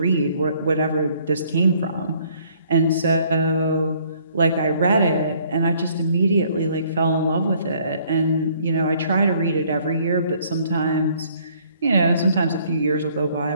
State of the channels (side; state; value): both; inverted; correlation -0.62